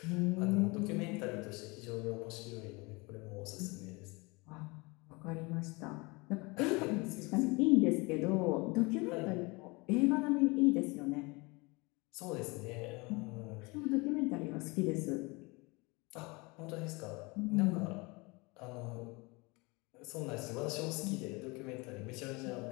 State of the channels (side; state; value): right; quieter; 26.2 dB